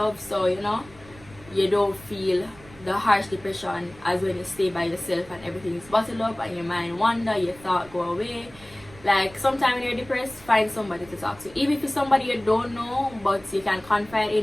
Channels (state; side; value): noise; right; rumble, 22 dB below the sound